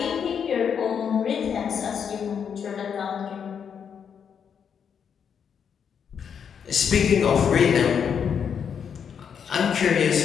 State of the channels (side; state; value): right; quieter; 7.4 dB